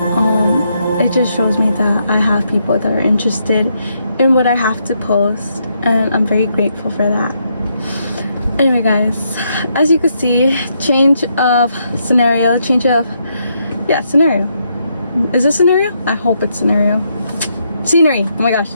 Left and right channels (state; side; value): inverted; both; correlation -0.77